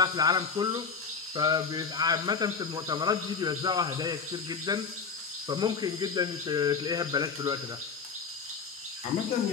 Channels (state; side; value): quieter; right; 5.4 dB